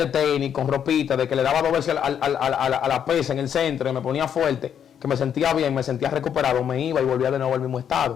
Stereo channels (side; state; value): right; quieter; 8.7 dB